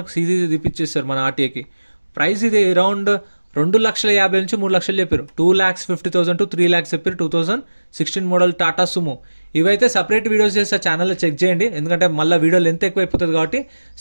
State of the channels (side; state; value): both; inverted; correlation -1.00